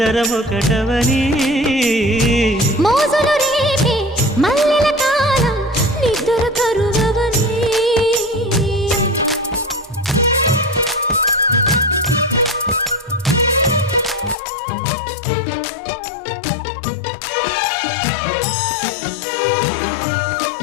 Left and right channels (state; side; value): drops out; right; at 14.4 s